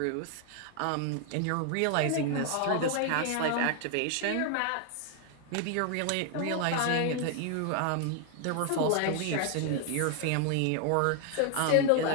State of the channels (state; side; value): different; both; correlation 0.00